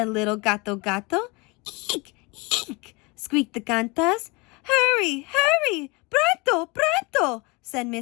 little Gato Gato. "Eek, eek," squeaked the Cantas. "Hurry, hurry, pronto, pronto," said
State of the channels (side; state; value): right; quieter; 26.8 dB